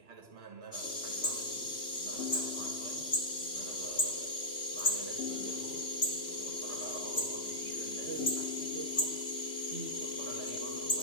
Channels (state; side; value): late; right; 3.0 ms